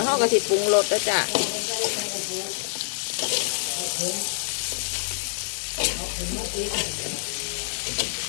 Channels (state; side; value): silent; right; digital silence